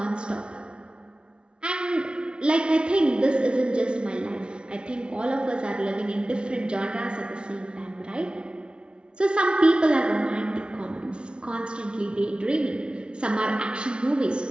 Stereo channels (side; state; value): left; late; 0.056 ms